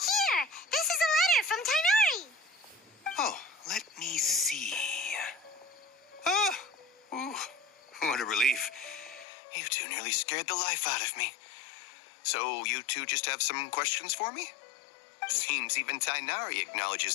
This is a letter from Tainari! Oh, let me see. Oh, ooh, what a relief. You two nearly scared the life out of me. So you two just have some questions for me? Seems even Tainari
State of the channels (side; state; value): right; drops out; at 9.2 s